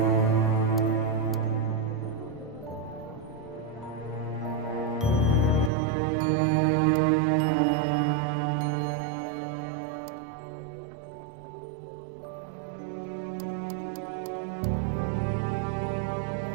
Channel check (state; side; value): drops out; left; at 5.7 s